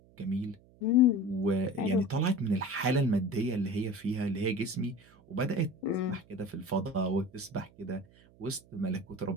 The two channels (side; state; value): right; noise; hum, 27 dB below the sound